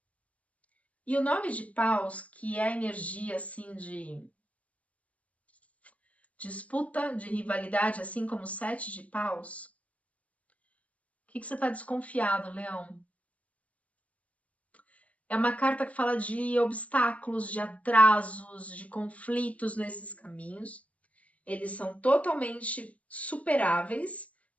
E o 9 de paus, que é a energia assim de disputa, de rivalidade, assim como o 7 de paus. O que você está desconfiado, Leão? É uma carta que fala de obstáculos, de atrasos, de conflitos nesses caminhos. Eles são totalmente superáveis,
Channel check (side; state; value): right; late; 0.067 ms